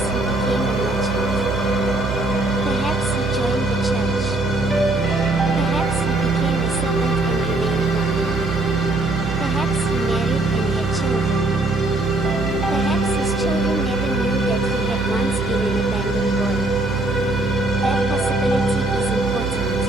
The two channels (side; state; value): right; noise; hum, 5 dB below the sound